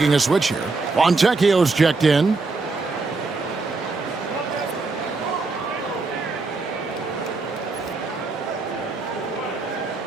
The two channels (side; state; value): left; quieter; 3.8 dB